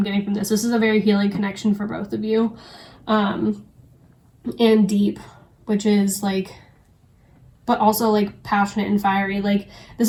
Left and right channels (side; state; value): both; identical; correlation 1.00